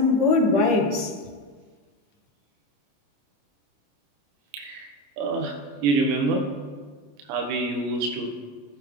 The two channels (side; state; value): left; late; 28 ms